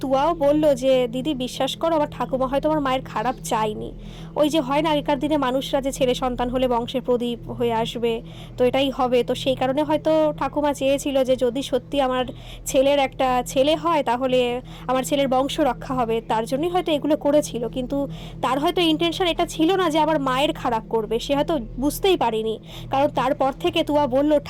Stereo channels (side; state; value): both; identical; correlation 1.00